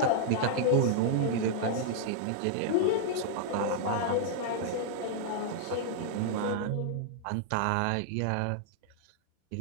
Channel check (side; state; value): both; different; correlation -0.01